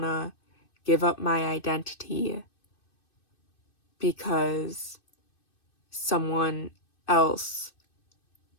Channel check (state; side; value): late; right; 2.6 ms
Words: to give up my identity because someone else